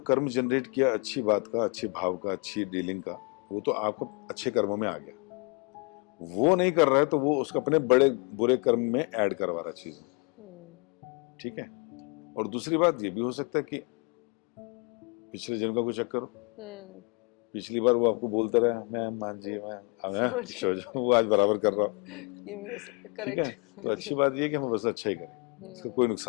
कर्म जनरेट किया अच्छी बात का, अच्छे भाव का, अच्छी डीलिंग का, वो तो आपको अच्छे कर्मों में आ गया। वो नहीं कर रहा है तो वो उसको अपने बड़े बुरे कर्म में ऐड करवा रहा चीज, ठीक है। और दूसरी बात ये भी हो सकता है कि पिछले जन्म का कोई चक्कर हो, पिछली बार वो आपको बोलता रहा मैं मान जी मैं वो आज बराबर कर रहा हूँ, ये भी हो सकता है, ठीक है। करेक्ट। तो अच्छी बात ये है कि हम बस अच्छा ही करें, इसका कोई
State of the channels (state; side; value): quieter; right; 33.6 dB